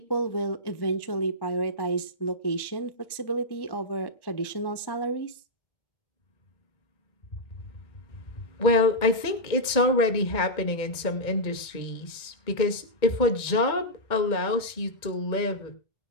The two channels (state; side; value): late; right; 2.1 ms